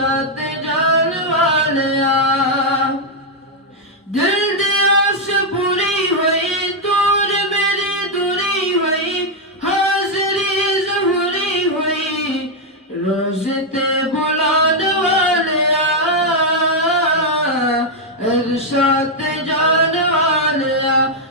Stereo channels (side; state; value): both; normal; correlation 0.00